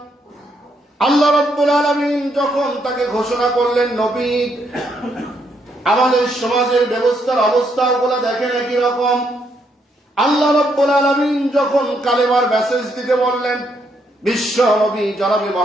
আল্লাহ রাব্বুল আলামিন যখন তাকে ঘোষণা করলেন নবী, আমাদের সমাজের ব্যবস্থার অবস্থাগুলো দেখেন একই রকম। আল্লাহ রাব্বুল আলামিন যখন কালেমার মেসেজ দিতে বললেন, বিশ্ব নবী জনাবে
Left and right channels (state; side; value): normal; both; correlation 0.75